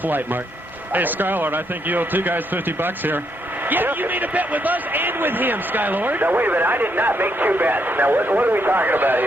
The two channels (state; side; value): normal; both; correlation 0.76